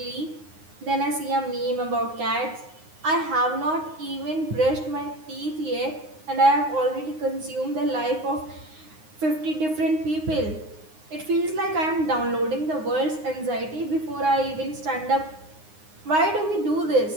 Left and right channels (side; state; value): left; late; 9.6 ms